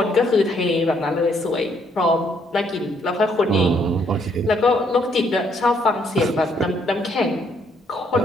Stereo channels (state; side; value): normal; both; correlation 0.69